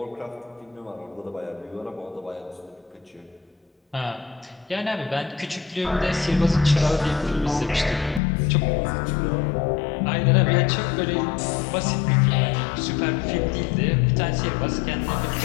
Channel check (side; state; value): right; drops out; at 8.2 s